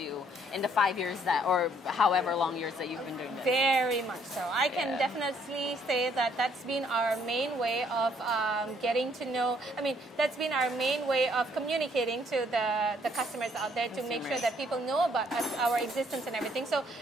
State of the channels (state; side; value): normal; both; correlation 0.66